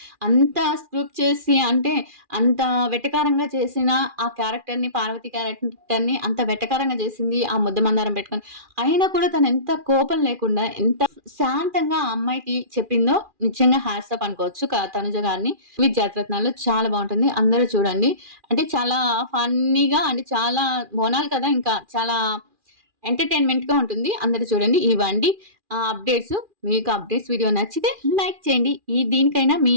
అంత స్క్రిప్ట్ చేసి అంటే అంత వెటకారంగా చేసిన ఆ క్యారెక్టర్‌ని పార్వతి క్యారెక్టర్‌ని అంత వెటకారంగా చేసింది ఆ ముద్దమందారం పెట్టుకొని. అయినా కూడా తను ఎంత కోపం లేకుండా ఎంత శాంతంగా ఆ అమ్మాయికి చెప్పిందో నిజంగా హ్యాట్స్ ఆఫ్ అనుకోవచ్చు తనుజ గారిని. జాతిరత్నాలు చాలా బావుంటుంది. అందరూ చూడండి. అంటే చాలా ఫన్నీగా అంటే చాలా బోనాలు కదా! ఇంకా చాలా ఎంటర్‌టైన్‌మెంట్‌గా ఉంటుంది. అందరూ చూడండి. ఇవండి అప్డేట్స్. మీకు అప్డేట్స్ వీడియో నచ్చితే లైక్ చేయండి. దీనికైనా మీ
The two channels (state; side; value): late; left; 2.4 ms